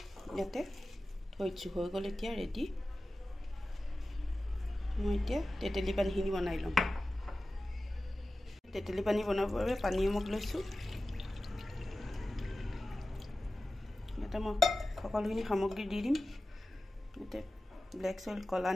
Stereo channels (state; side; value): normal; both; correlation 0.95